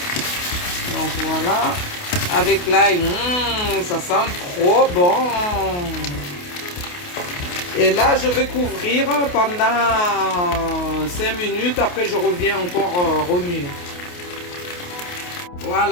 Donc, voilà. Avec l'ail, ça sent trop bon. Et là, je vais couvrir pendant 5 minutes. Après, je reviens encore remuer.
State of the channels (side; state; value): right; late; 28 ms